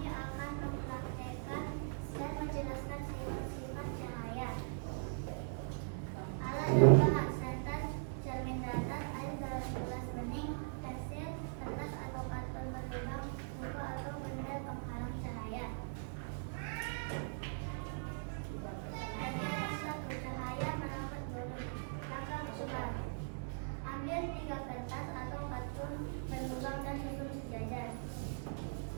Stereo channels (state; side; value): silent; left; digital silence